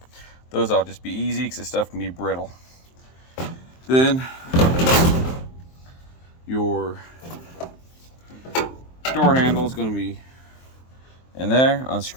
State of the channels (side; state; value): right; late; 23 ms